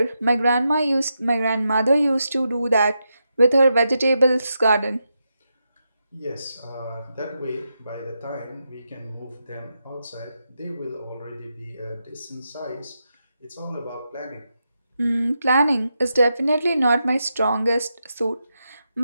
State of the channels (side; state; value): both; inverted; correlation -0.85